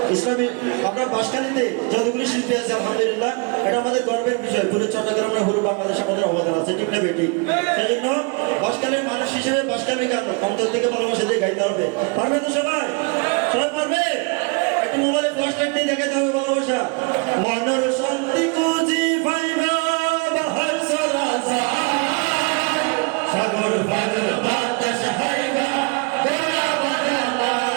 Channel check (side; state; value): left; quieter; 31.2 dB